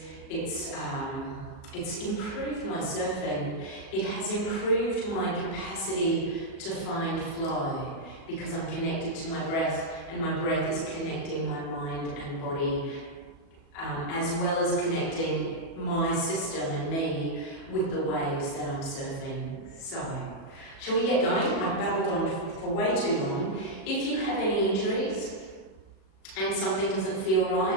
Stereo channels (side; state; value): right; late; 37 ms